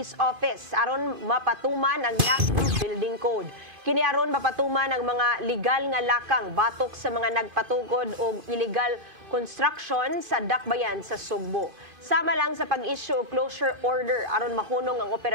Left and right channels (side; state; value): left; late; 2.5 ms